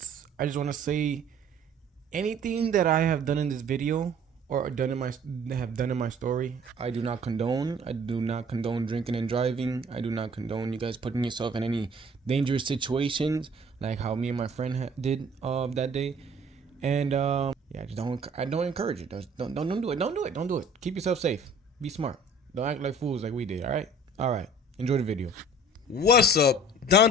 I just want to say anything that I have done in this video or have done in my story, I do not condone. I do not condone drinking and driving. I do not condone you guys putting yourself in any dangerous situations like how me and my friend did that day. And yeah, just don't I don't encourage it. Don't do it. Don't do it. Don't do it. Keep yourself safe. Be smart. Don't act like fools like we did. All right. All right. Enjoy the video. What's up?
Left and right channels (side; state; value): both; normal; correlation 0.51